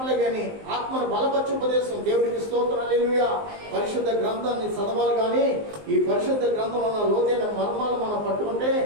కానీ ఆత్మను బలపరచు ఉపదేశం. దేవుడికి స్తోత్రం, హల్లెలూయా. పరిశుద్ధ గ్రంథాన్ని చదవాలి. కానీ ఈ పరిశుద్ధ గ్రంథంలో ఉన్న లోతైన మర్మాలు మనం పట్టుకుంటే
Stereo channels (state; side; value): late; left; 19 ms